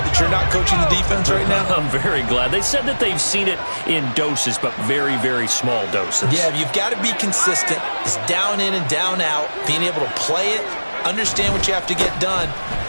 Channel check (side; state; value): both; inverted; correlation -1.00